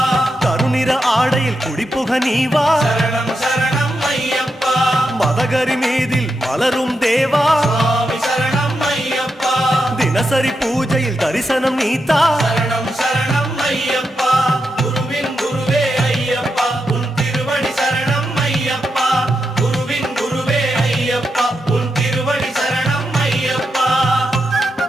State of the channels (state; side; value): normal; both; correlation 0.86